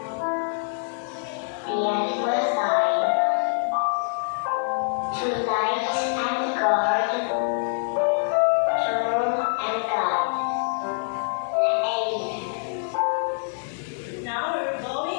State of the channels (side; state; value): right; silent; 62 dB below the other